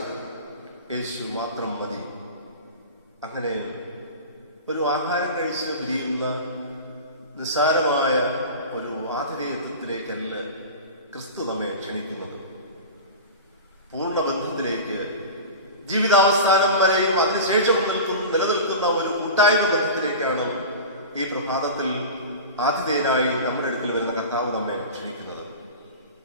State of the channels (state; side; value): inverted; both; correlation -0.31